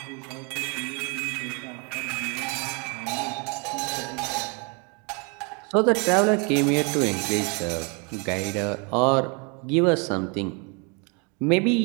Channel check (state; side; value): quieter; left; 32.6 dB